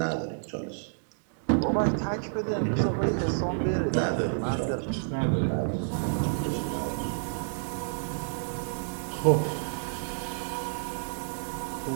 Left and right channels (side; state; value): left; silent; digital silence